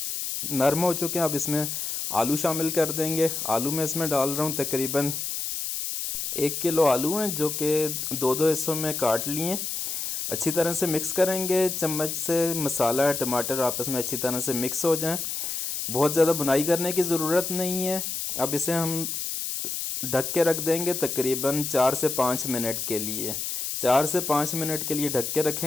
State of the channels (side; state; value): left; noise; hiss, 3 dB below the sound